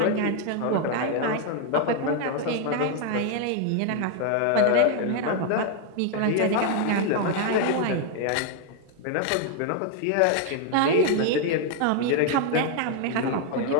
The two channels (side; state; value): both; different; correlation 0.00